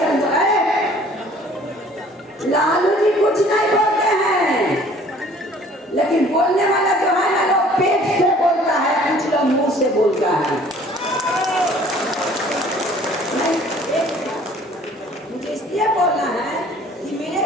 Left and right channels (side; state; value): both; normal; correlation 0.53